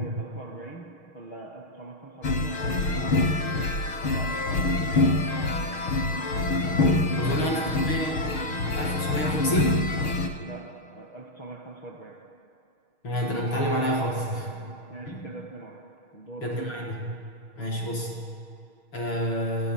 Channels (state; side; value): late; right; 6.4 ms